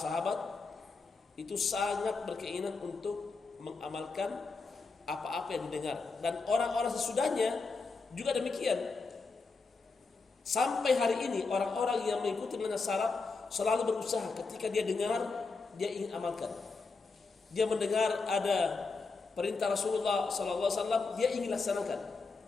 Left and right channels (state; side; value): quieter; right; 4.2 dB